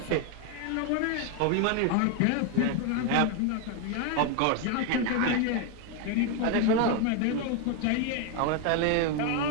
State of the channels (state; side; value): different; both; correlation 0.01